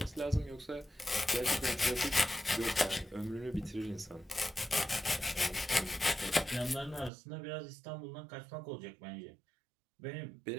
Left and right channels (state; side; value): drops out; left; at 7.1 s